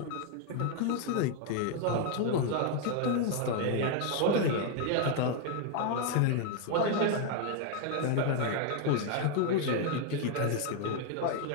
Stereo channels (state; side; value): different; both; correlation 0.00